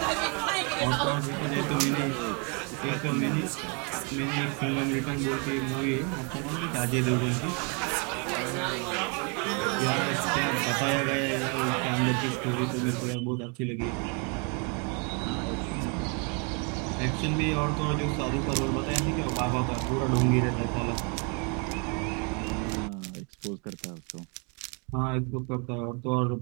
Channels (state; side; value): quieter; left; 35.2 dB